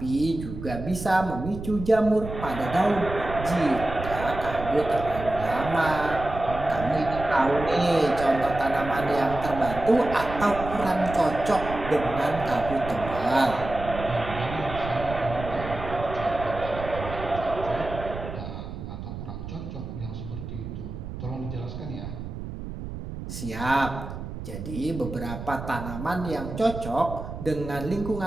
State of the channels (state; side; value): noise; right; rumble, 9 dB below the sound